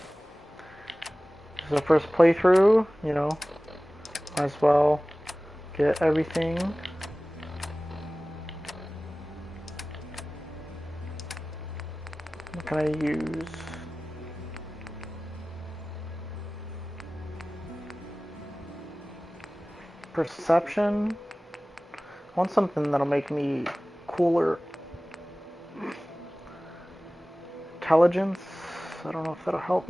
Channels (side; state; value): both; normal; correlation 0.97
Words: This is the first playthrough, you know. Might as well get everything. What can I use? Perception. I want something that'll make me cooler. Intelligence. I don't know if that'll help